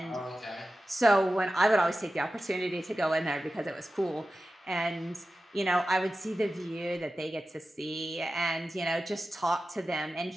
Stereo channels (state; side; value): normal; both; correlation 0.94